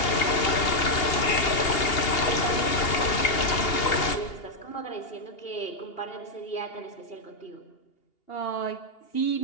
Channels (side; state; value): right; late; 2.8 ms